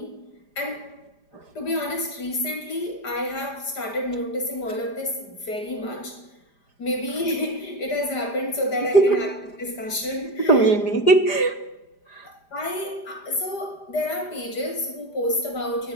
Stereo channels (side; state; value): right; late; 5.0 ms